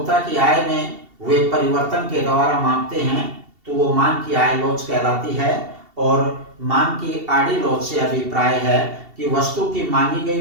की आय में हुए परिवर्तन के द्वारा मापते हैं तो वो मांग की आय लॉज कहलाती है। और मांग की आड़ी लॉज से अभिप्राय है कि वस्तु की मांगी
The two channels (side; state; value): left; late; 2.7 ms